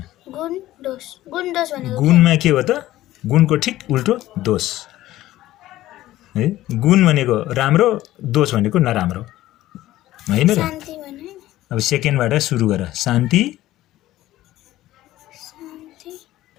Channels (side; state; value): right; quieter; 15.3 dB